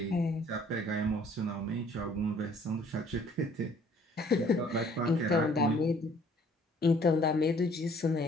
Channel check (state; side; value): normal; both; correlation 0.58